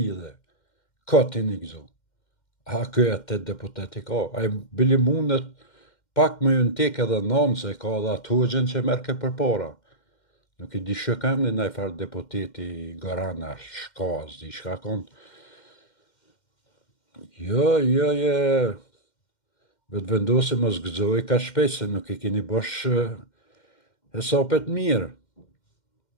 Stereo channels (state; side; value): late; right; 2.1 ms